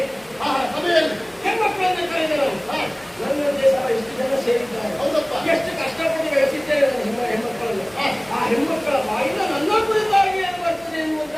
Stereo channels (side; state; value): left; noise; hum, 29 dB below the sound